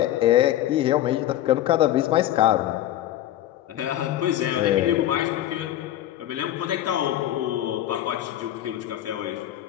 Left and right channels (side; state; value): right; quieter; 13.0 dB